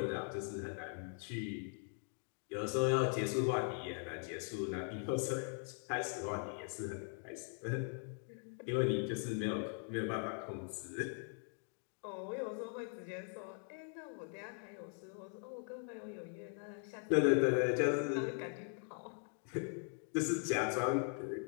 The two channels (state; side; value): silent; right; 51 dB below the other